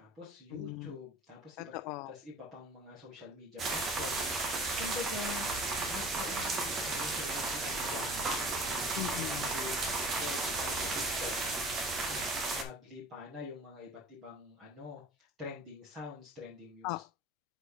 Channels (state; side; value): normal; both; correlation 0.45